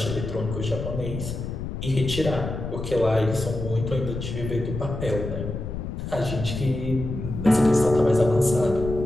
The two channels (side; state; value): left; noise; rumble, 6 dB below the sound